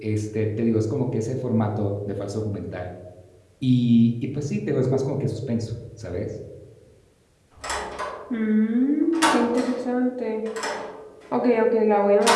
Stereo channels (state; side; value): identical; both; correlation 1.00